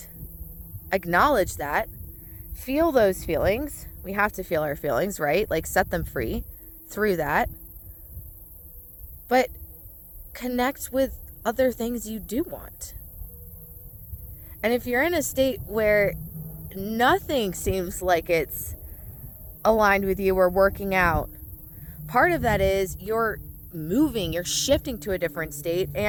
acknowledge that. Feel those feelings. We have to feel our feelings, right? Like, set them free through that. But connect with other things you do want. And if you're in a state where nothing seems like it's aligned with you or working out, part of that is you're moving, you're shifting to a different state.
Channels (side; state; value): both; identical; correlation 1.00